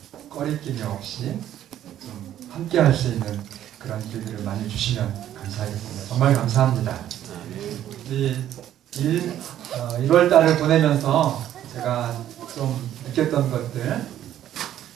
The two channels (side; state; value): left; quieter; 11.6 dB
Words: 꺼리낌이 없이 좀 함께 할 수 있는 그런 길들을 많이 주시면 감사하겠습니다. 정말 감사합니다. 이 1월 달을 보내면서 제가 좀 느꼈던 것들,